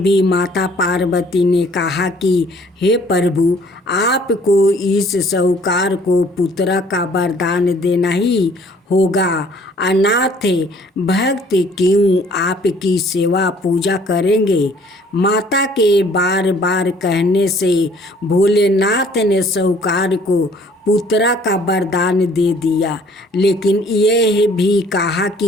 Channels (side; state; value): both; normal; correlation 0.57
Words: माता पार्वती ने कहा कि हे प्रभु, आपको इस साहूकार को पुत्र का वरदान देना ही होगा। अनाथ भक्त क्यों आपकी सेवा पूजा करेंगे। माता के बार बार कहने से भोलेनाथ ने साहूकार को पुत्र का वरदान दे दिया, लेकिन यह भी कहा